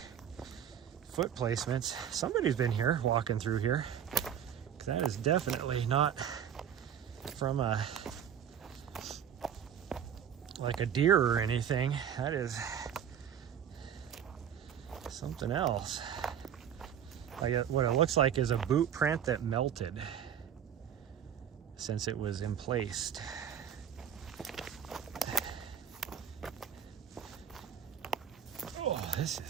foot placements. Somebody's been here, walking through here. That is definitely not from like a deer or anything. That is something else. Like what it looks like is a boot print that melted since it was emplaced. Oh, this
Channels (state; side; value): quieter; left; 8.8 dB